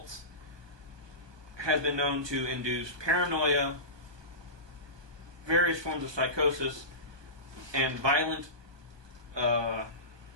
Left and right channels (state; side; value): late; left; 1.2 ms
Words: has been known to induce paranoia, various forms of psychosis, and violent